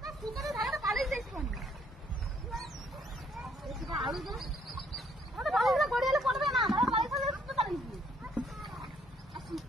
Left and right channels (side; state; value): both; normal; correlation 0.66